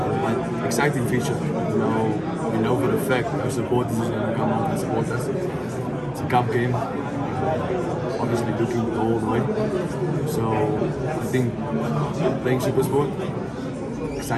exciting feature. We know for a fact our supporters are going to come out and support us. It's a cup game. Obviously looking to go all the way. So I think playing super sport,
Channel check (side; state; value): both; identical; correlation 1.00